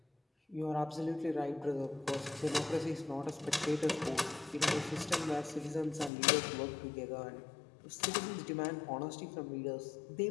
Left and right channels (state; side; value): drops out; right; at 6.1 s